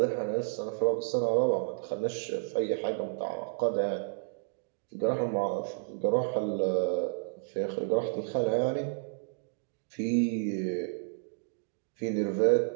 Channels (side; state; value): left; silent; digital silence